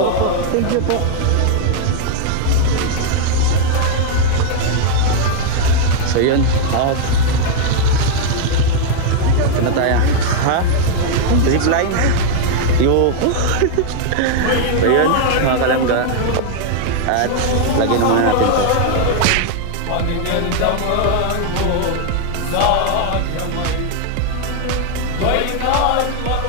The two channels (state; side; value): different; both; correlation 0.00